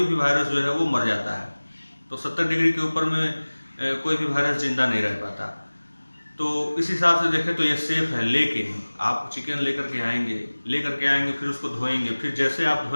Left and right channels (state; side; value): inverted; both; correlation -1.00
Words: भी वायरस जो है वो मर जाता है। तो 70 डिग्री के ऊपर में कोई भी वायरस जिंदा नहीं रह पाता। तो इस हिसाब से देखें तो ये सेफ है। लेकिन आप चिकन लेकर के आएंगे, फिर उसको धोएंगे, फिर जैसे आप